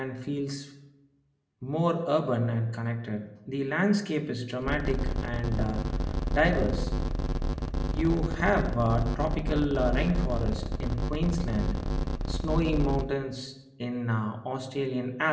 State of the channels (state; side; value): identical; both; correlation 1.00